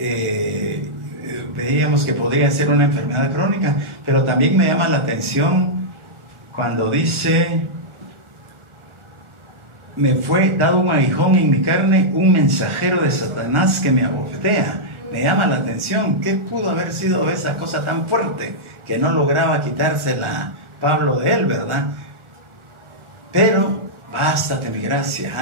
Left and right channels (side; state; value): left; late; 1.4 ms